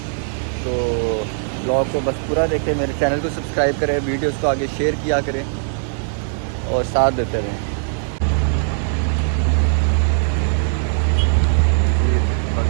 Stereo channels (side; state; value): left; silent; digital silence